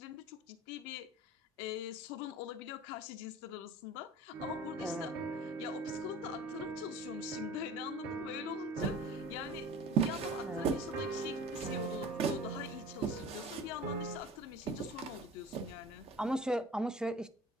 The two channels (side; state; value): both; normal; correlation 0.41